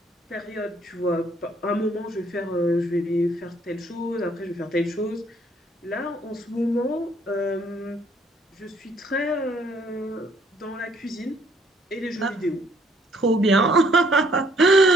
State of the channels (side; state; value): both; normal; correlation 0.65